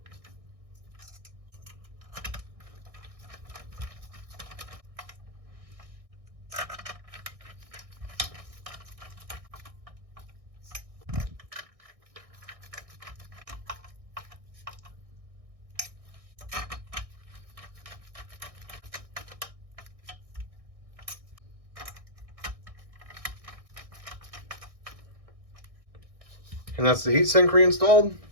And that's the heatsink reinstalled.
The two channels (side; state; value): left; late; 1.6 ms